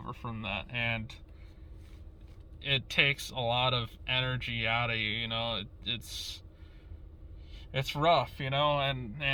from that, and it takes a lot of energy out of you. It's rough, and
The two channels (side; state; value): both; identical; correlation 1.00